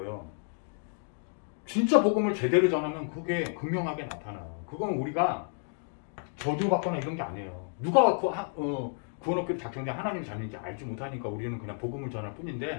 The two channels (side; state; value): right; silent; 57 dB below the other